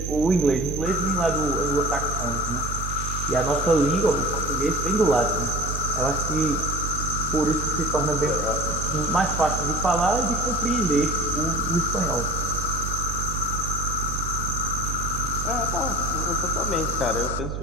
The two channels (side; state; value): right; noise; hum, 5 dB below the sound